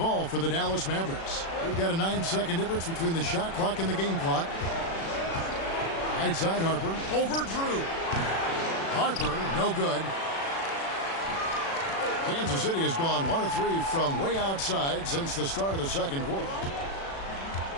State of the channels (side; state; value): right; late; 36 ms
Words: for the Dallas Mavericks. We've got a 9-second difference between the shot clock and the game clock. Right side Harper. Over Drew. Harper, no good. Kansas City has gone 1 of 3 from way outside since the start of the second quarter.